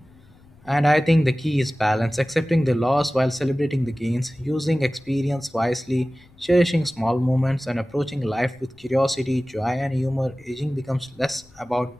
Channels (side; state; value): left; noise; rumble, 27 dB below the sound